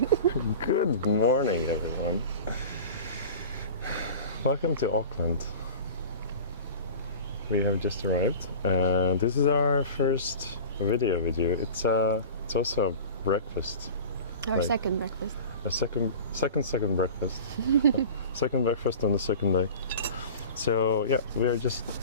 morning, everyone. Welcome to Auckland. We have just arrived, and this is our first video with you. It's also a breakfast. Our Like, second breakfast. a second breakfast. Second breakfast on the second day. So yeah, we are just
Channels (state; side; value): inverted; both; correlation -0.36